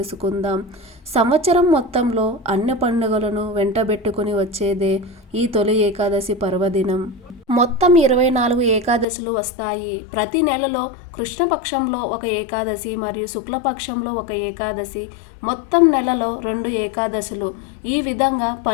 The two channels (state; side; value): drops out; right; at 9.1 s